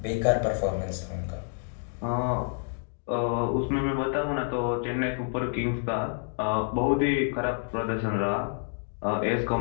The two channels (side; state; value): right; silent; 59 dB below the other